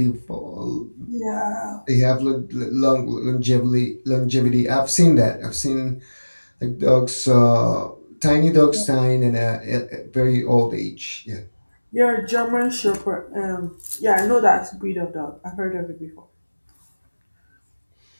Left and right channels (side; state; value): both; inverted; correlation -1.00